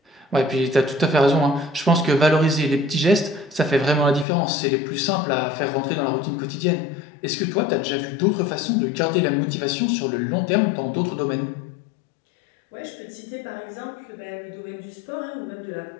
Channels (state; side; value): drops out; right; at 4.2 s